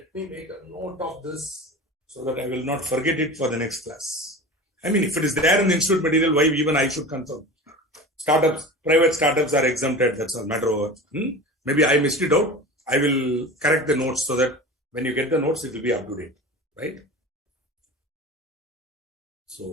me make a note of this so that I will not forget it for the next class. I mean, if it is there in the institute material, why even I should confirm? Startups, private startups are exempted. That's a matter of. Maybe I missed it out. I will correct the notes so that when you get the notes, it will be up to date, right?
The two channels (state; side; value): normal; both; correlation 0.33